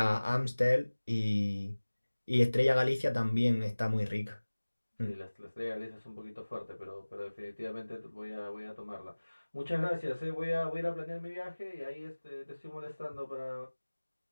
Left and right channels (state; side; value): inverted; both; correlation -1.00